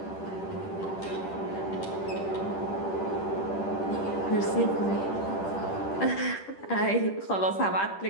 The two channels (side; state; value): right; late; 10 ms